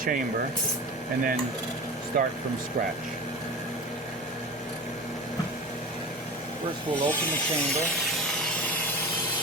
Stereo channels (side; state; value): both; normal; correlation 0.31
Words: and then start from scratch. First, we'll open the chamber.